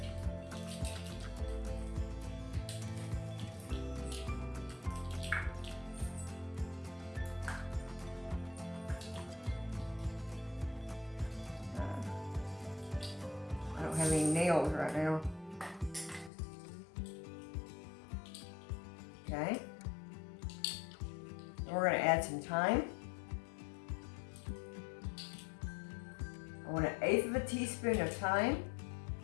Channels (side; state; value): right; drops out; at 16.3 s